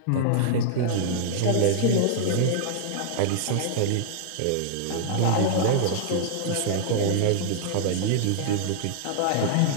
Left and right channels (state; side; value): different; both; correlation -0.01